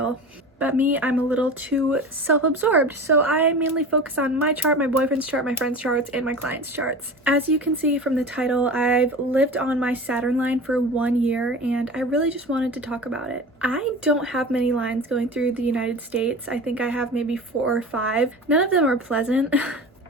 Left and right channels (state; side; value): normal; both; correlation 0.34